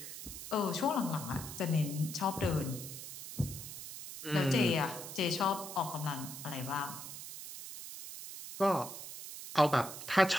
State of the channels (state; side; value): noise; right; hiss, 10 dB below the sound